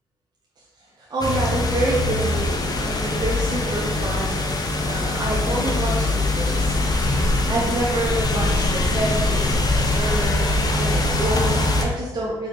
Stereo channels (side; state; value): both; normal; correlation 0.65